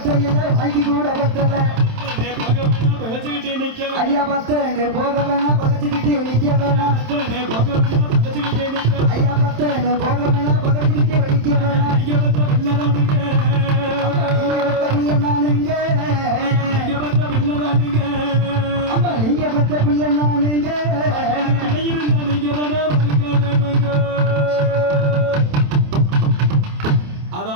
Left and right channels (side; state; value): left; late; 27 ms